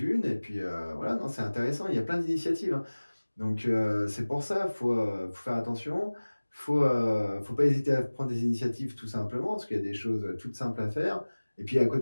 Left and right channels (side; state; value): both; inverted; correlation -1.00